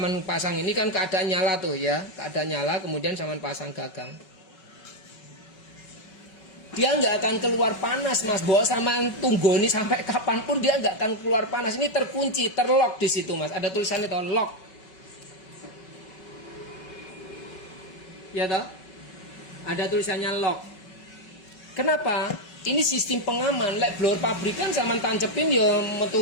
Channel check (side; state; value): right; late; 5.3 ms